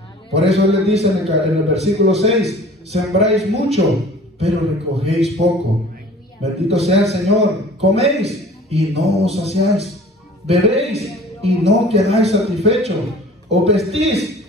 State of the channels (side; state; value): both; normal; correlation 0.46